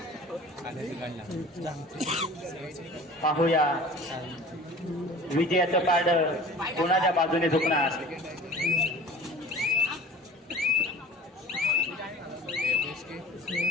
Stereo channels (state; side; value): normal; both; correlation 0.42